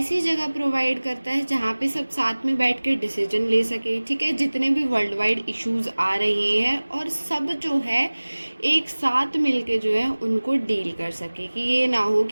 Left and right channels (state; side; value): inverted; both; correlation -1.00